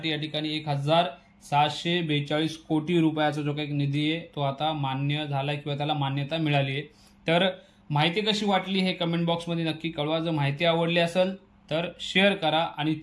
या ठिकाणी 1642 कोटी रुपयाचा जो काही निधी आहे तो आता मान्य झाला किंवा त्याला मान्यता मिळाली आहे। तर माहिती कशी वाटली हे कमेंट बॉक्समध्ये नक्की कळवा। जर माहिती आवडली असेल तर शेअर करा आणि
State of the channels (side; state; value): both; identical; correlation 1.00